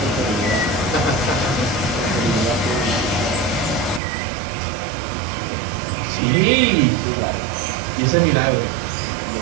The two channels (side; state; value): left; drops out; at 4.0 s